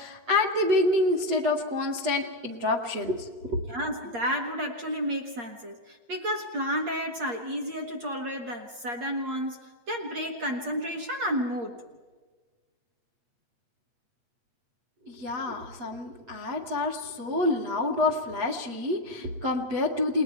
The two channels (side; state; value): left; late; 8.5 ms